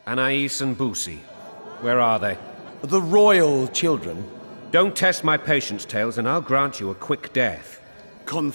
Anais and Boussy, where are they? The royal children. Don't test my patience, Tales, and I'll grant you a quick death.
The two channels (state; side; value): inverted; both; correlation -1.00